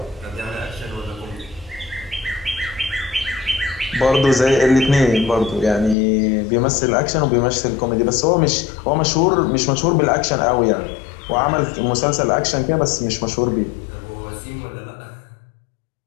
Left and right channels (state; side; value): drops out; right; at 6.0 s